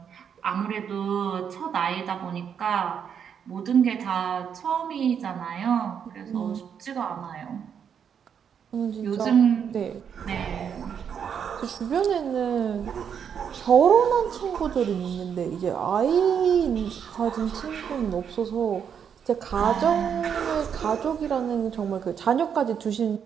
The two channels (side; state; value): left; quieter; 7.7 dB